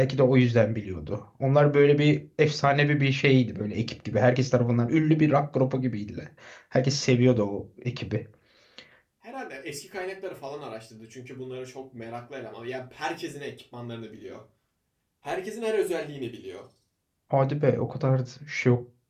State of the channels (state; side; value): identical; both; correlation 1.00